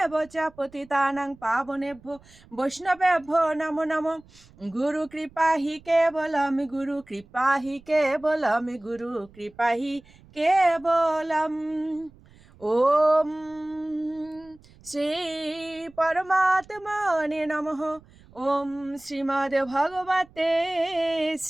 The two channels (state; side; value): noise; right; rumble, 26 dB below the sound